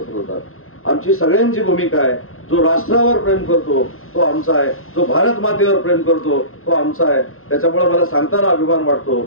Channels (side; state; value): right; late; 0.61 ms